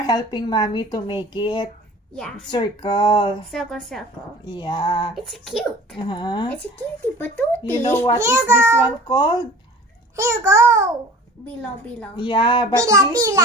helping mommy to make it. Yeah. Circle. Circle, circle. Yeah. It's cute. It's a cutie patootie. You know what is this one called? Here you go. Bilo-bilo. Yeah, but this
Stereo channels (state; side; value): normal; both; correlation 0.43